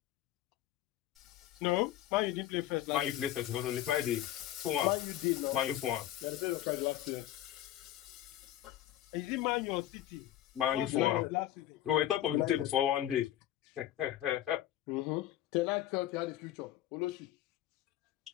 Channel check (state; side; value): quieter; right; 13.0 dB